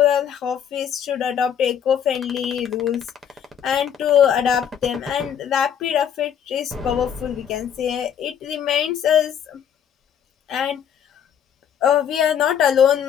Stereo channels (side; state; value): right; quieter; 8.7 dB